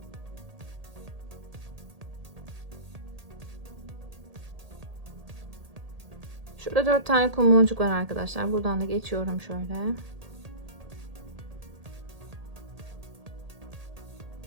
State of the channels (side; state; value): left; late; 1.8 ms